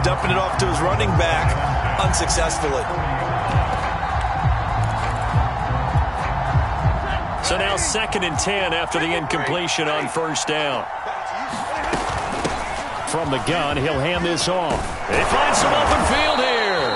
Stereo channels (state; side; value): identical; both; correlation 1.00